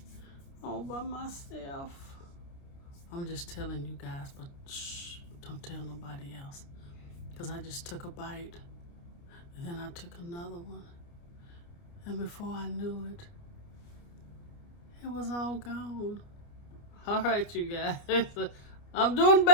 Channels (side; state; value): right; late; 29 ms